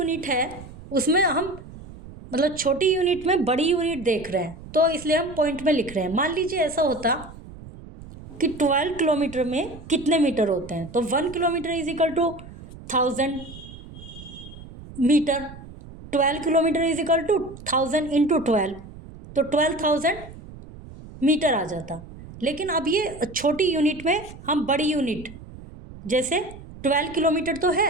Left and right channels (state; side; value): noise; right; rumble, 16 dB below the sound